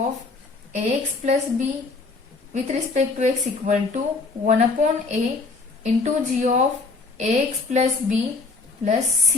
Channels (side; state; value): right; quieter; 3.9 dB